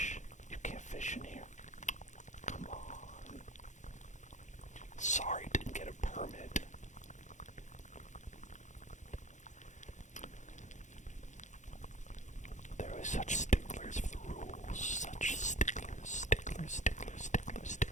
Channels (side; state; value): right; late; 0.35 ms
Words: You can't fish in here. Come on. Sorry, didn't get a permit. There are such sticklers for the rules. Such sticklers, sticklers, sticklers, sticklers,